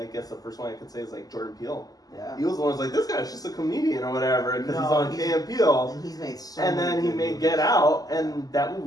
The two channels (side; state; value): right; late; 0.18 ms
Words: guess the first one I could say is like Jordan Peele. Yeah. He was the one who's like, this guy's just a comedian or whatever because he's No, on Key and Peele. And he's made so And many then he good made movies. Get Out, and that